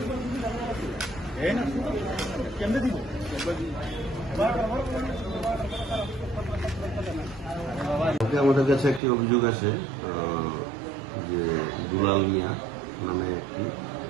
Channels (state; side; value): drops out; left; at 9.0 s